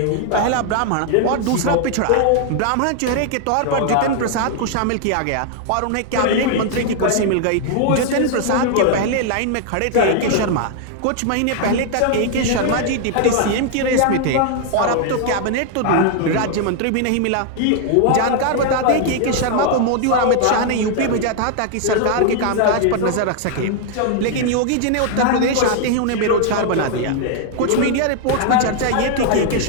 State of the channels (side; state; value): both; different; correlation 0.00